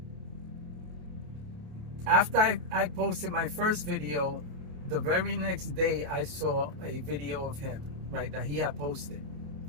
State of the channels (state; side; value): late; left; 28 ms